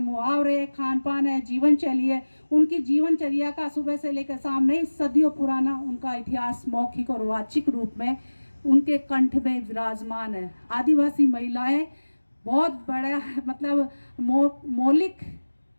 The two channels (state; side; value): inverted; both; correlation -1.00